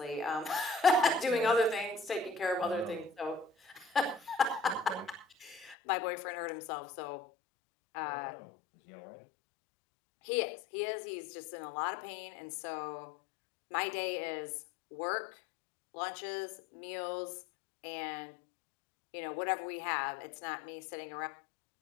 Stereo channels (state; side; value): drops out; right; at 5.8 s